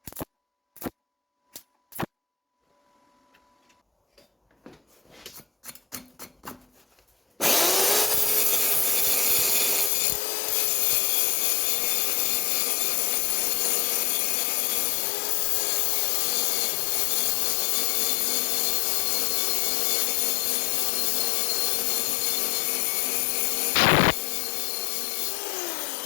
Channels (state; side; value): drops out; right; at 9.9 s